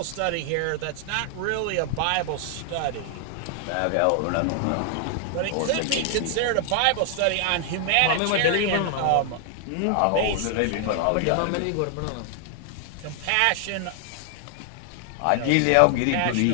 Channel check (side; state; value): both; different; correlation 0.00